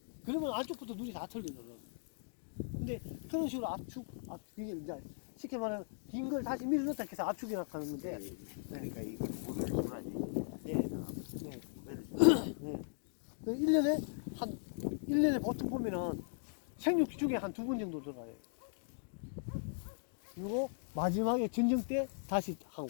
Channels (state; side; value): silent; right; digital silence